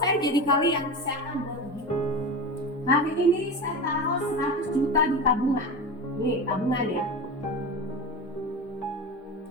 jadi kalian, saya akan buat begini. Hari ini saya taruh 100 juta di tabungan. Nih, tabungan ya.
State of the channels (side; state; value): both; normal; correlation 0.26